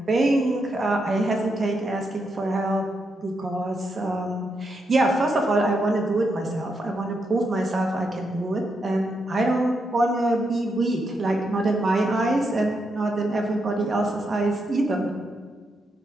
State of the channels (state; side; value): normal; both; correlation 0.82